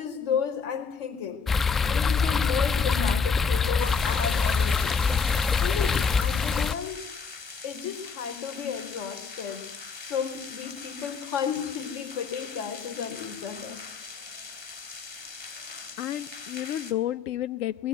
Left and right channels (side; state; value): right; quieter; 5.6 dB